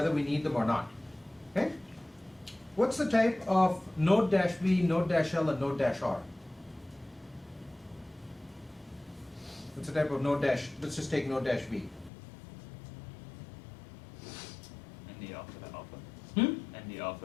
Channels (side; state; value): right; drops out; at 12.1 s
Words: we need them or not. Okay? What's the type of node-v, node-l, and node-r? What's the type of node-? Let's just take node-v. ND alpha to alpha. Hmm? ND